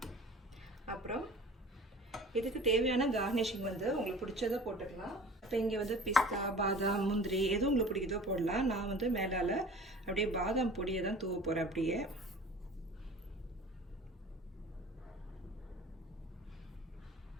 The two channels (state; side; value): normal; both; correlation 0.43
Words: அப்புறம் இதுக்கு தேவையான கார்னிஷிங் உங்களுக்கு பிடிச்சதை போட்டுக்கலாம். இப்போ இங்கே பிஸ்தா, பாதாம், முந்திரி எதுவும் உங்களுக்கு பிடிக்குதோ போடலாம். நான் மேலால் அப்படியே பாதாம் பொடியை தான் தூவ போகிறேன். அப்படியே